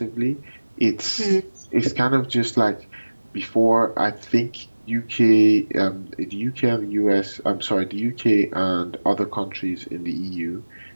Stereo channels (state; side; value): inverted; both; correlation -1.00